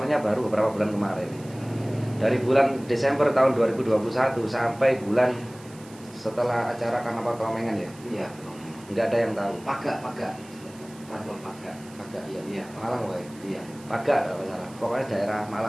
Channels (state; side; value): noise; right; hiss, 22 dB below the sound